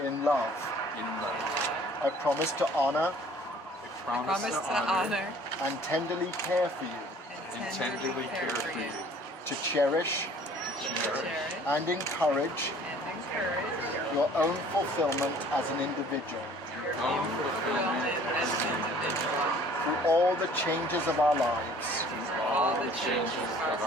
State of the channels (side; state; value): both; normal; correlation 0.53